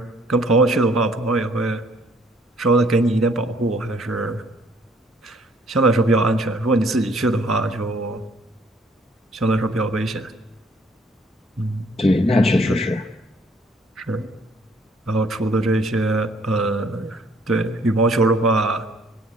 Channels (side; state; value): both; normal; correlation 0.61